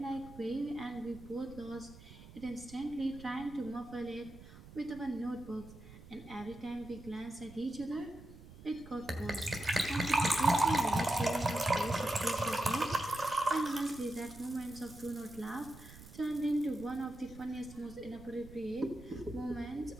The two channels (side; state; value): right; noise; rumble, 17 dB below the sound